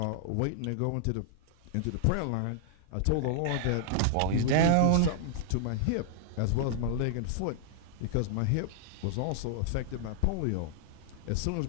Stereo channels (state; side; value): different; both; correlation -0.01